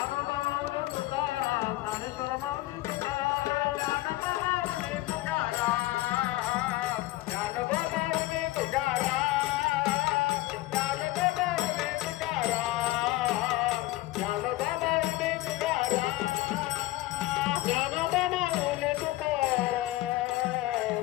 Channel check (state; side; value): quieter; right; 17.8 dB